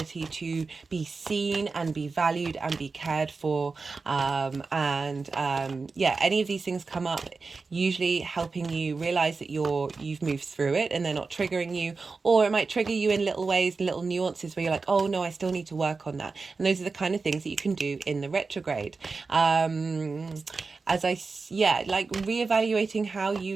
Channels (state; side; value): quieter; left; 4.3 dB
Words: to be seen and be valued and be cared for. Any of these things come up, usually helping you realize that you've moved through it and they're not triggering you, or it might trigger you in little ways, little nuances where you're like, oh no, I still need to work on that. And those are the kind of things that you can do in the retrograde. Like reevaluating how